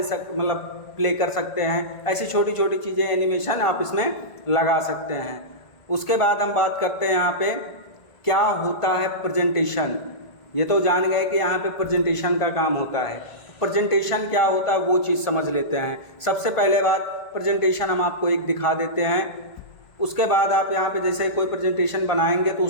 प्ले कर सकते हैं। ऐसी छोटी छोटी चीज़ें एनिमेशन आप इसमें लगा सकते हैं। उसके बाद हम बात करते हैं यहाँ पे क्या होता है प्रेजेंटेशन। ये तो जान गए कि यहाँ पे प्रेजेंटेशन का काम होता है। प्रेजेंटेशन क्या होता है वो चीज़ समझ लेते हैं। सबसे पहले बात, प्रेजेंटेशन हम आपको एक दिखा देते हैं। उसके बाद आप यहाँ पे जैसे कोई प्रेजेंटेशन बनाएंगे तो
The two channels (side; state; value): right; late; 1.5 ms